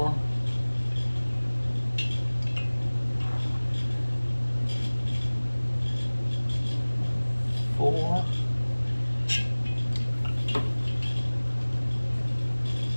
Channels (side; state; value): both; inverted; correlation -1.00